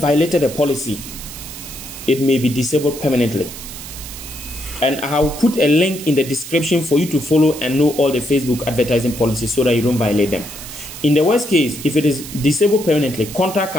a policy, it may be disabled permanently. And I will put a link in the description for you to follow and know all the Facebook advertising policies so that you don't violate them. In the worst case, if it is disabled permanently, contact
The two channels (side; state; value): right; noise; hiss, 12 dB below the sound